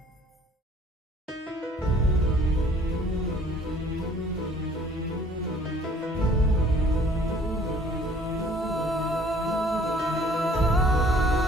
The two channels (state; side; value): normal; both; correlation 0.56